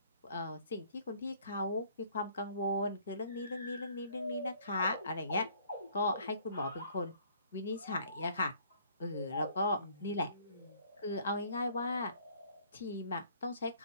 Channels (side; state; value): both; inverted; correlation -0.59